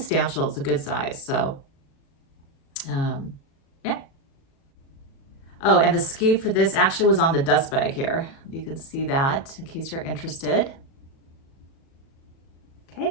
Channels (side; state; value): right; late; 37 ms